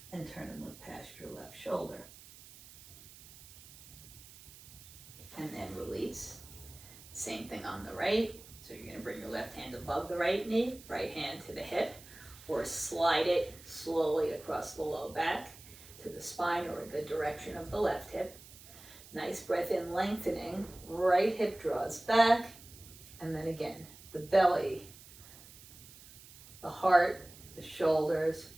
and turn and look past your left shoulder. And then release. Same thing on the right. So you're going to bring your left hand above the right knee, right hand to the hip, or slide it slowly across the low back to the spine or the direction of the left hip. Nice breath in, lengthening. Right hip draws back. And then again, the belly, the heart, the shoulders,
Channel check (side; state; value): right; noise; hiss, 19 dB below the sound